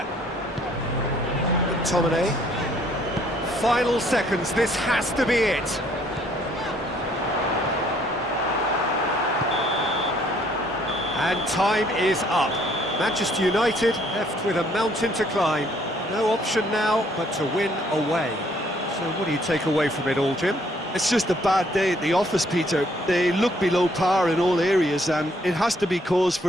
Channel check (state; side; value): normal; both; correlation 0.64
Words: McTominay. Final seconds, this has to be it. And time is up. Manchester United left with a mountain to climb. No option now but to win away. So what do you take away from it all, Jim? It's just a bad day at the office, Peter. They look below par in all areas, and it has to be cause